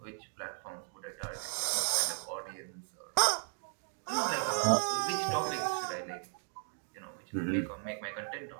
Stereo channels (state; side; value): silent; left; 54 dB below the other